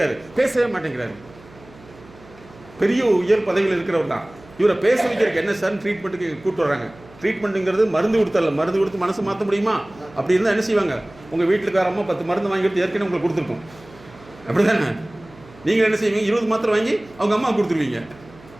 பேசவே மாட்டேங்கிறாரு. பெரிய உயர் பதவியில் இருக்கிறவர் தான். இவரை பேச வைக்கிறதுக்கு என்ன சார் ட்ரீட்மெண்ட்டுக்கு கூப்பிட்டு வராங்க. ட்ரீட்மெண்ட்டுங்கிறது மருந்து கொடுத்தரல, மருந்து கொடுத்து மனசு மாற்ற முடியுமா? அப்படி இருந்தால் என்ன செய்வாங்க, உங்கள் வீட்டுக்கார அம்மா 10 மருந்து வாங்கி கொடுத்து ஏற்கனவே உங்களுக்கு கொடுத்துருக்கோம். அப்படி தானே? நீங்கள் என்ன செய்வீங்க, 20 மாத்திரை வாங்கி அவங்க அம்மா கொடுத்துருவீங்க.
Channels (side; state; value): right; noise; hum, 23 dB below the sound